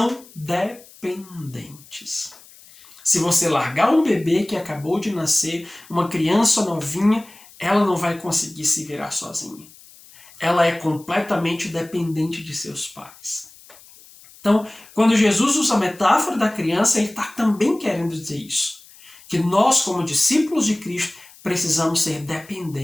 dependentes. Se você largar um bebê que acabou de nascer, uma criança novinha, ela não vai conseguir se virar sozinha. Ela é completamente dependente de seus pais. Então, quando Jesus usa a metáfora da criança, ele está também querendo dizer isso. Que nós, como discípulos de Cristo, precisamos ser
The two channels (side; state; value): left; noise; hiss, 23 dB below the sound